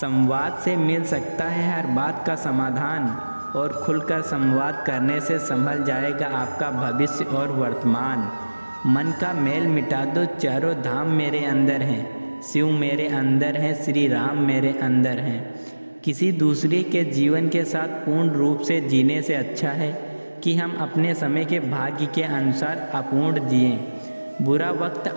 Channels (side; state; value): both; inverted; correlation -1.00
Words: से मिल सकता है हर बात का समाधान, और खुलकर संवाद करने से संभल जाएगा आपका भविष्य और वर्तमान। मन का मेल मिटा दो, चारों धाम मेरे अंदर हैं, शिव मेरे अंदर हैं, श्री राम मेरे अंदर हैं। किसी दूसरे के जीवन के साथ पूर्ण रूप से जीने से अच्छा है कि हम अपने समय के भाग्य के अनुसार अपूर्ण जिएं। बुरा वक्त